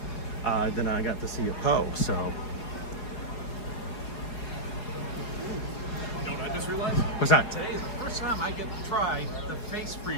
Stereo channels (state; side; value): late; right; 4.8 ms